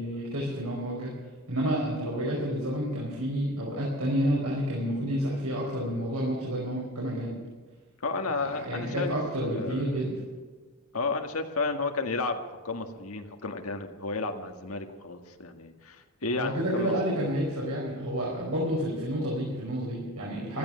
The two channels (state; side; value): normal; both; correlation 0.27